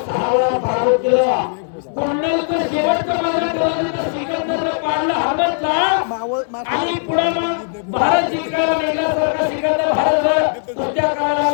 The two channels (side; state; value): right; silent; 63 dB below the other